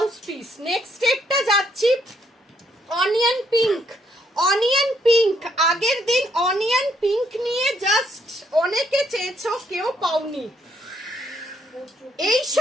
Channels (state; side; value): normal; both; correlation 0.71